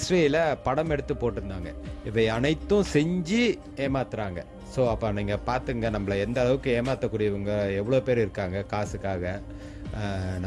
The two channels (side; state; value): both; identical; correlation 1.00